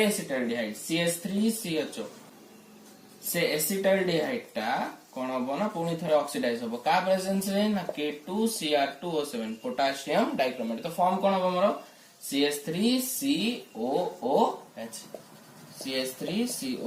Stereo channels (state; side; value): identical; both; correlation 1.00